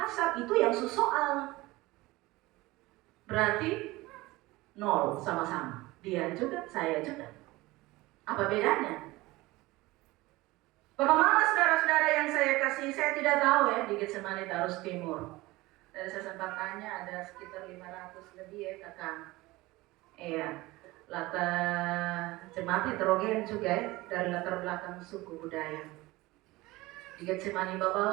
itu yang soal. Berarti nol sama-sama. Dia juga, saya juga. Apa bedanya? Bapak Mama, saudara-saudara yang saya kasih, saya tidak tahu ya di Getsemani Tarus Timur. Dari saya sempat tanya, ada sekitar 500 lebih ya kakak. Iya, latar jemaat heterogen juga ya, dari latar belakang suku budaya. Di Getsemani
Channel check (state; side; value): quieter; left; 20.1 dB